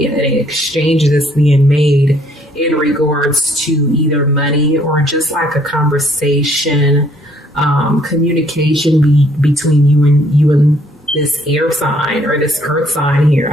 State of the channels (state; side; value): normal; both; correlation 0.65